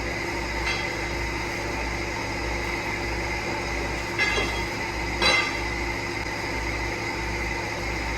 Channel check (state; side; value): identical; both; correlation 1.00